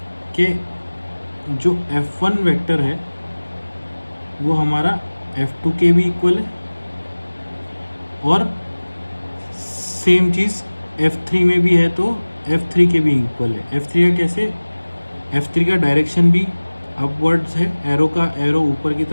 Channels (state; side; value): inverted; both; correlation -1.00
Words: कि जो F1 वेक्टर है वो हमारा F2 के भी इक्वल है, और सेम चीज़ F3 में भी है तो F3 के भी इक्वल है। F3 का कैसे, F3 का डायरेक्शन भी अपवर्ड्स है, एरो का एरो ऊपर की